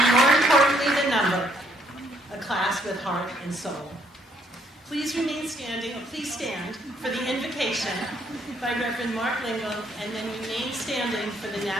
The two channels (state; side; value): normal; both; correlation 0.68